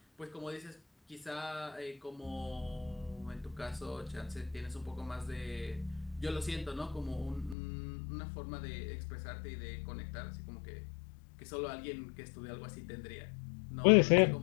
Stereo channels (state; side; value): drops out; right; at 7.6 s